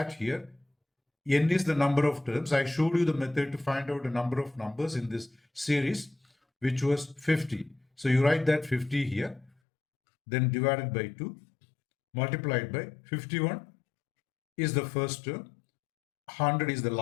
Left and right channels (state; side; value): drops out; right; at 9.5 s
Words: here, n is the number of terms. I showed you the method to find out the number of numbers in this series, which was 50. So you write that 50 here, then divided by 2, multiplied by 51 is the first term, 100 is the